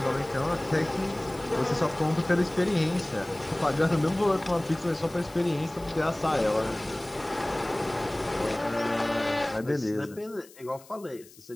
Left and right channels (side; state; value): left; noise; hiss, 23 dB below the sound